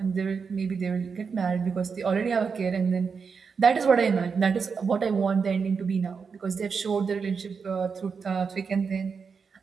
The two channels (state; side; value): quieter; left; 5.6 dB